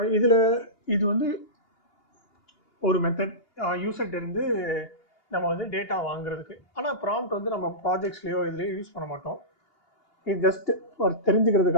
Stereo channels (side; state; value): right; late; 2.8 ms